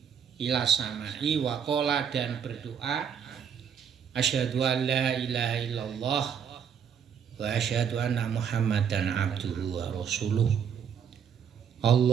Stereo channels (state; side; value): quieter; left; 7.6 dB